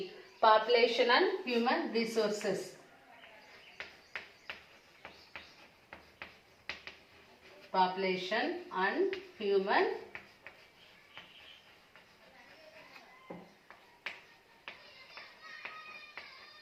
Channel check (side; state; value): both; identical; correlation 1.00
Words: population and human resources. Population and human